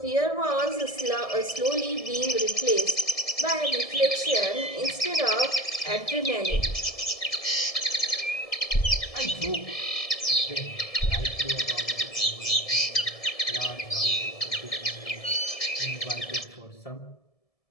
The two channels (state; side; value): late; right; 1.7 ms